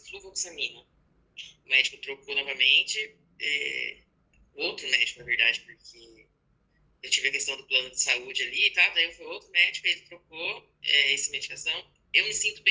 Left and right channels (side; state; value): both; identical; correlation 1.00